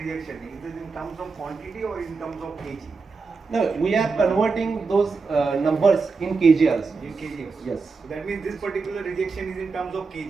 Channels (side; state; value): left; quieter; 4.5 dB